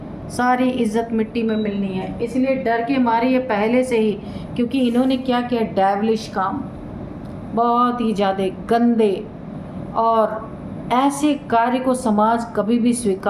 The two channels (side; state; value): both; identical; correlation 1.00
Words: सारी इज्जत मिट्टी में मिलनी है। इसलिए डर के मारे ये पहले से ही, क्योंकि इन्होंने क्या किया, डेविलिश काम, बहुत ही ज़्यादा गंदे, और ऐसे कार्य को समाज कभी भी